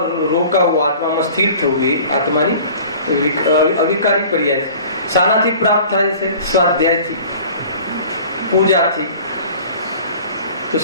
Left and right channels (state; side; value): inverted; both; correlation -0.45